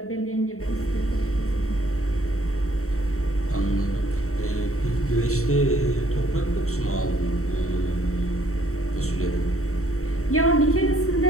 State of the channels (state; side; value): late; right; 0.64 ms